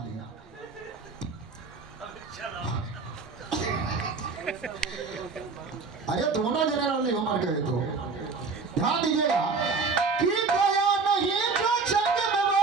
लिया। अरे दोनों जनरल हो मन गए तो ध्यान दीजिएगा कि गया नहीं जो जंग में वो,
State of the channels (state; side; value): quieter; left; 4.5 dB